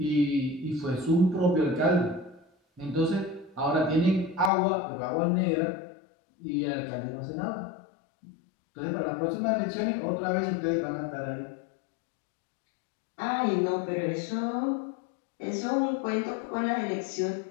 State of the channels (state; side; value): drops out; right; at 4.5 s